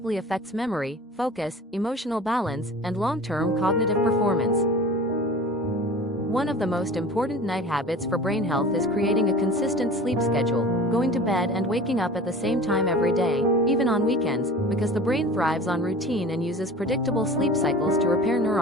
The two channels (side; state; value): both; normal; correlation 0.40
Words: affects memory, focus, emotional balance, and long-term cognitive performance. One of the most important night habits for brain health is creating a consistent sleep schedule, going to bed and waking up at the same time every day, even on weekends, because the brain thrives on routine and uses predictable sleep cycles to repair